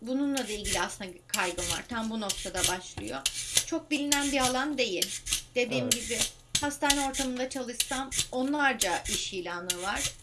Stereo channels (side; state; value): both; identical; correlation 1.00